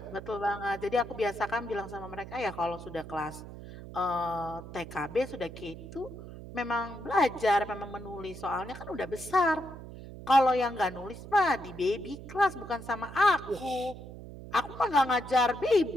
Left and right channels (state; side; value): noise; right; hum, 13 dB below the sound